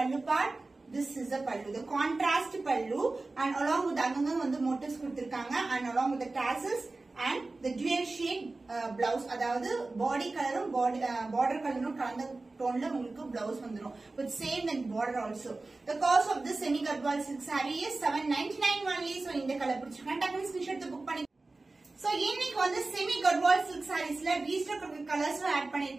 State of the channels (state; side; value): quieter; left; 3.3 dB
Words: pallu part. This is the pallu, the contrast pallu, and along with அங்கங்க வந்து motifs கொடுத்திருக்காங்க and along with the tassels and the dual shade blouse. அதாவது body கலரும் border கலரும் கலந்த டோன்ல உங்களுக்கு blouse வந்துரும் with same and border also. The cost of this semi cut ball silk saree is 799 only. So இந்த கலர் பிடிச்சிருக்கேன் டக்குனு ஸ்கிரீன்ஷாட் எடுத்து புக் பண்ணி. சோ இன்னைக்கு வந்து செமி கட்வால் சில்க் சாரீஸ்ல ரீஸ்டாக் கலர்ஸ் ஆட்